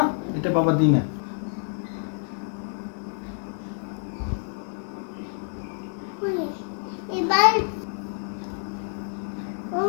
এটা বাবা দিই না। এবার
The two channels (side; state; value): right; silent; 60 dB below the other